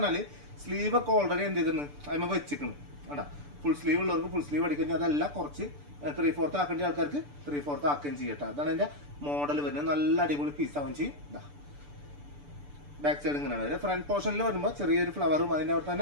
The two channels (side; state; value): left; late; 6.9 ms